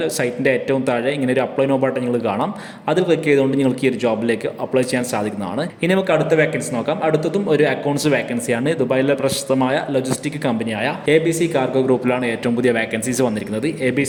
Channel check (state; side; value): identical; both; correlation 1.00